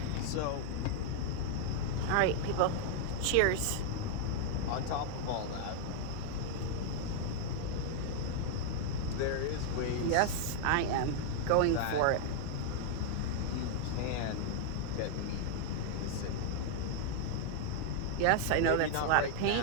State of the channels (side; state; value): both; different; correlation 0.00